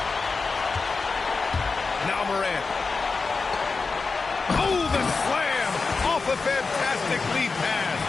Now Morant. Oh, the slam off a fantastic lead pass.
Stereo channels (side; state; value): right; quieter; 4.3 dB